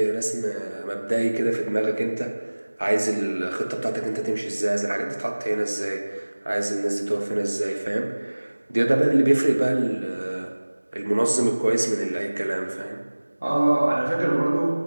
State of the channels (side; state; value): both; inverted; correlation -1.00